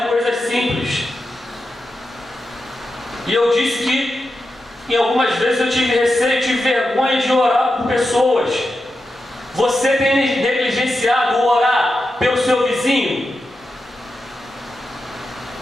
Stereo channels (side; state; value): both; normal; correlation 0.89